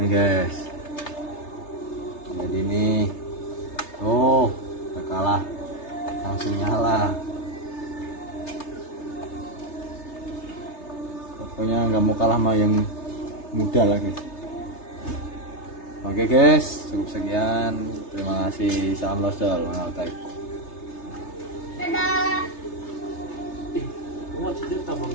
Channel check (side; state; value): right; late; 3.3 ms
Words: guys, jadi ini oh nggak kalah, langsung nyala. Pokoknya nggak mau kalah sama yang muda lah guys. Oke guys, cukup sekian. Terima kasih. Salam losdol. Kamu cerita tabang